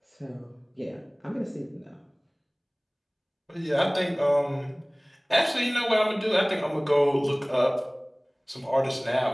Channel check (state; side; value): identical; both; correlation 1.00